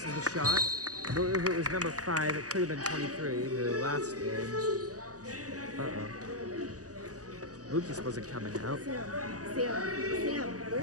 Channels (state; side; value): late; left; 0.67 ms